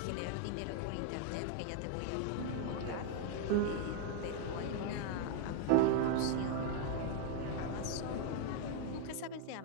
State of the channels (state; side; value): different; both; correlation 0.00